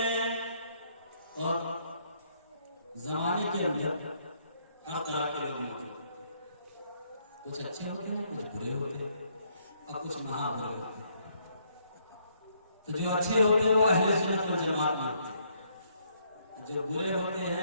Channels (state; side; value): inverted; both; correlation -0.70